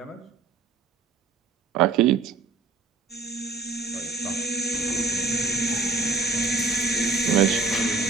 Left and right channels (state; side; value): quieter; left; 4.1 dB